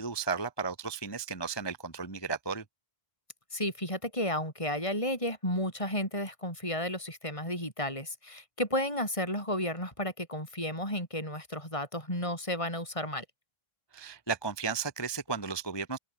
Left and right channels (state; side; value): late; right; 1.5 ms